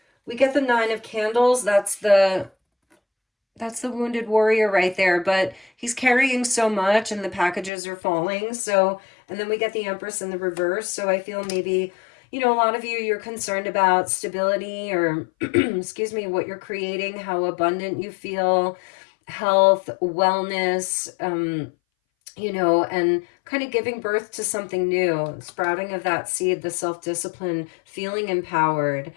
we get the 9 of Candles. That's the wounded warrior right there, but he's carrying so much and the packages are falling. So, and then we get the Empress in the reverse. So I feel maybe, you know, a lot of you're concerned about stability or, excuse me, what you're creating, how abundant you feel, health, wellness, you know, and kind of giving birth to something new, sprouting of that seed, the self-discipline, feeling empowered,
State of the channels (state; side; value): drops out; right; at 7.7 s